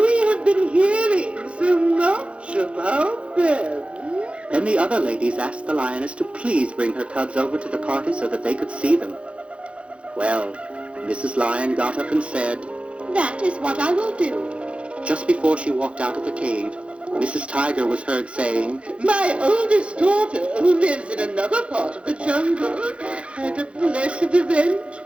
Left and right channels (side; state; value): left; late; 0.060 ms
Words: have been hearing so much about them. Then the other ladies asked the lioness to please bring her cubs over to the party so that they could see them. Well, Mrs. Lion got up and said, That is what I will do. Just before she walked out of the cave, Mrs. Tiger was heard saying, My oldest daughter, who lives in another part of the jungle, had a blessed event,